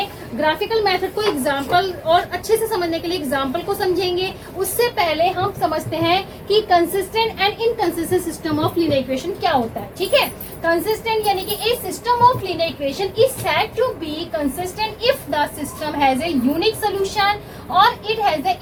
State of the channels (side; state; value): both; identical; correlation 1.00